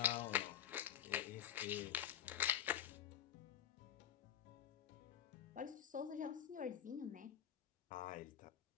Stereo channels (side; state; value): right; quieter; 10.0 dB